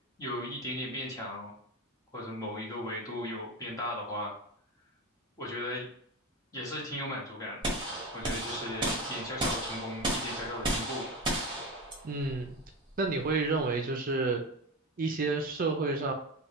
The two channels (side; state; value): both; normal; correlation 0.22